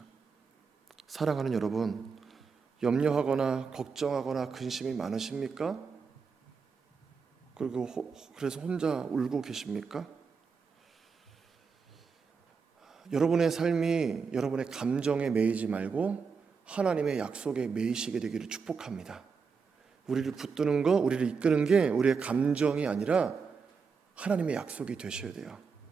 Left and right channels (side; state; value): left; quieter; 5.5 dB